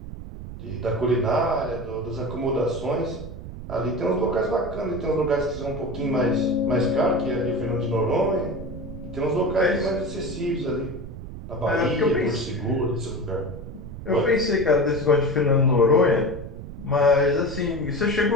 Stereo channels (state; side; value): noise; right; rumble, 11 dB below the sound